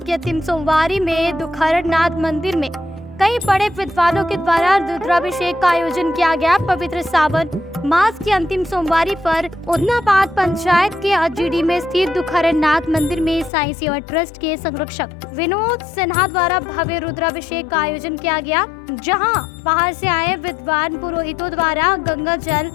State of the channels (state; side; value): drops out; right; at 13.5 s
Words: के अंतिम सोमवारी में दुखहरनाथ मंदिर में कई बड़े विद्वानों के द्वारा रुद्राभिषेक का आयोजन किया गया। पवित्र सावन मास की अंतिम सोमवारी पर उदनाबाद पंचायत के GD में स्थित दुखहरनाथ मंदिर में साईं सेवा ट्रस्ट के संरक्षक विनोद सिन्हा द्वारा भव्य रुद्राभिषेक का आयोजन किया गया, जहां बाहर से आए विद्वान पुरोहितों द्वारा गंगा जल,